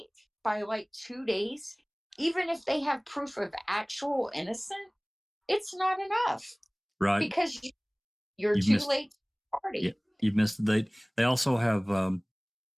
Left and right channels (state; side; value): identical; both; correlation 1.00